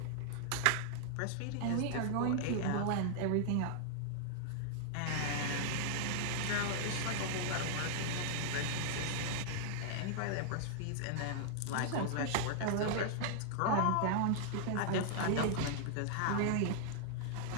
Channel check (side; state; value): both; different; correlation -0.01